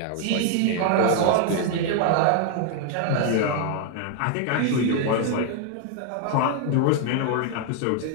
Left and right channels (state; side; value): different; both; correlation 0.00